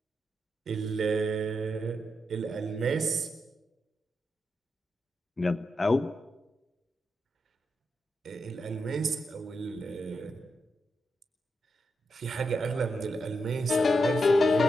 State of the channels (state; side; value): normal; both; correlation 0.85